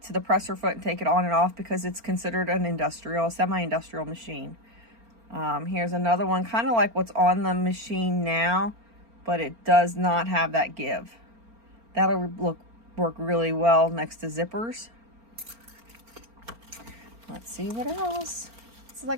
to the presser foot and take it on and off because it's considered an industrial, semi-industrial machine. Here's another one, kind of like what's on the machine now, but it does not have that give. That'll work really well next to zippers. Let's see what else. It's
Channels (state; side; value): late; left; 4.4 ms